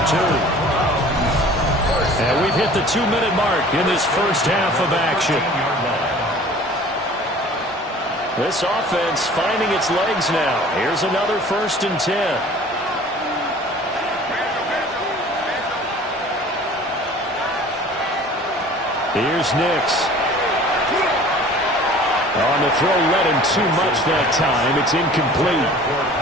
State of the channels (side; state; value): both; normal; correlation 0.47